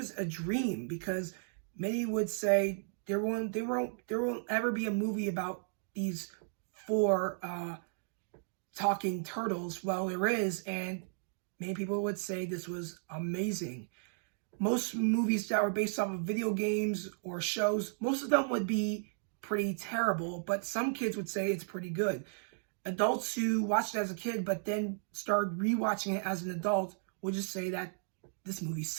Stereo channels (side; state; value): left; silent; digital silence